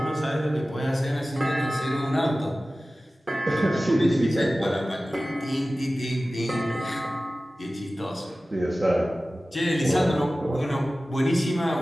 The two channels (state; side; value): normal; both; correlation 0.96